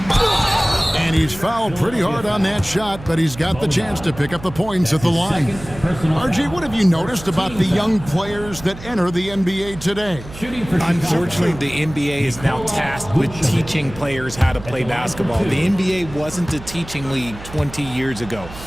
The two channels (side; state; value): right; noise; hum, 15 dB below the sound